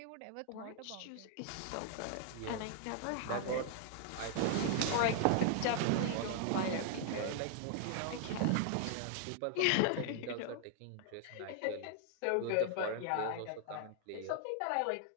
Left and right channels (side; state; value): both; different; correlation 0.00